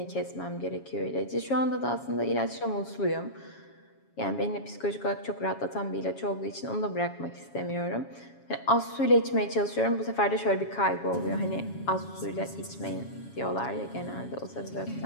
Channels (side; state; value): right; late; 7.2 ms